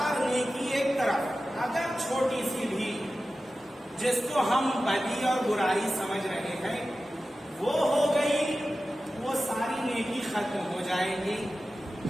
نیکی ایک طرف، اگر چھوٹی سی بھی جس کو ہم بدی اور برائی سمجھ رہے ہیں وہ ہو گئی، وہ ساری نیکی ختم ہو جائے گی۔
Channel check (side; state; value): both; normal; correlation 0.94